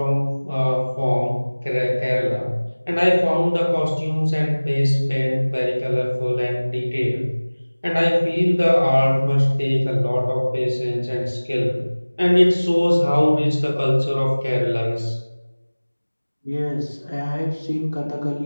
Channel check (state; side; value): inverted; both; correlation -1.00